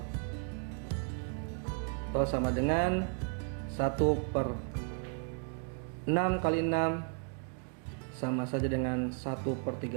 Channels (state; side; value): quieter; left; 39.8 dB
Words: Atau sama dengan 1/6 kali 6 sama saja dengan